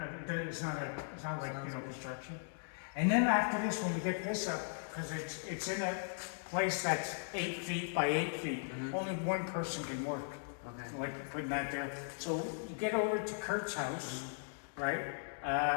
It's not like construction. And then after this, when we get this up, because it's in a place that's 8 feet by 8 feet, only one person can work. Okay. Like putting that there. So you get over to Kurt's house, right?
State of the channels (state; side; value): silent; right; digital silence